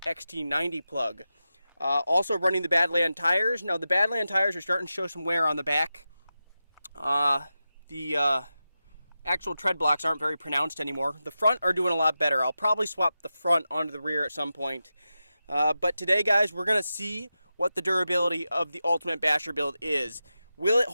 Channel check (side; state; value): both; inverted; correlation -0.91